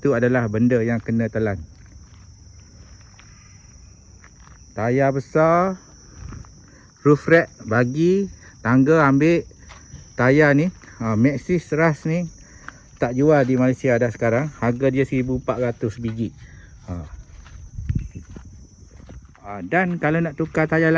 tu adalah benda yang kena telan. Tayar besar, roof rack bagi, tangga ambil. Tayar ni Maxxis Rust ni tak jual di Malaysia dah sekarang. Harga dia 1400 biji. Dan kalau nak tukar tayar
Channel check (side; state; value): both; identical; correlation 1.00